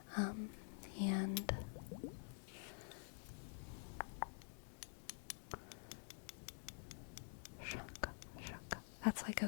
And that's like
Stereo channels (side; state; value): right; silent; digital silence